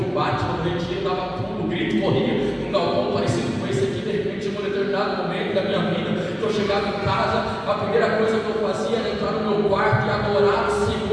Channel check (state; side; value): identical; both; correlation 1.00